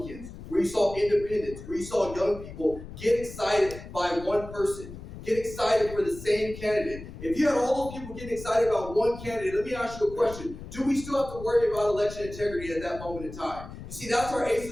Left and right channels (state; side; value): noise; left; rumble, 13 dB below the sound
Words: where you saw independents, where you saw young people get excited by one person, get excited for the same candidate. If you had all those people getting excited about one candidate, let me ask you a question. Do we still have to worry about election integrity at that moment in time? You see, that's our ace